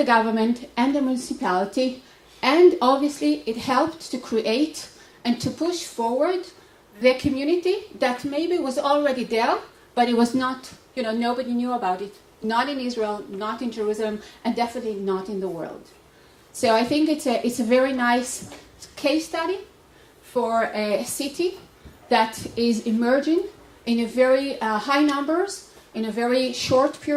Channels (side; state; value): both; identical; correlation 1.00